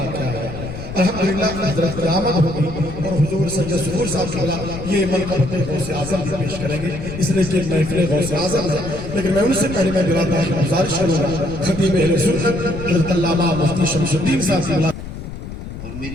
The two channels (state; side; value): noise; left; rumble, 10 dB below the sound